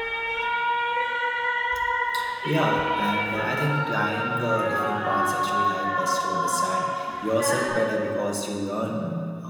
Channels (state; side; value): identical; both; correlation 1.00